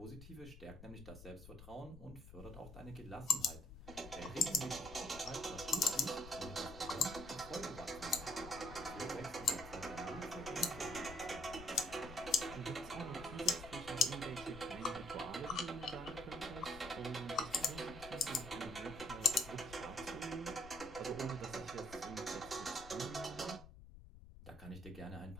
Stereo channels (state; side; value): noise; left; rumble, 15 dB below the sound